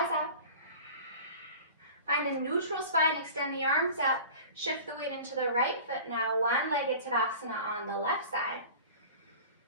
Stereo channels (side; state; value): both; inverted; correlation -0.40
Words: up. Find a neutral spine, extend the arms up. Shift the weight into the right foot now. One-legged Tadasana on the left side.